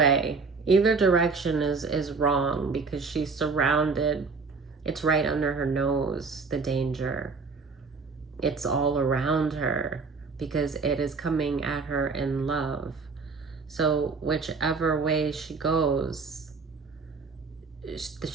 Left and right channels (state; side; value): quieter; left; 4.6 dB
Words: either direction is wrong, because she's surrounded. It's right under her nose, the danger. It's all around her because it is coming at her in love. So whichever way she goes,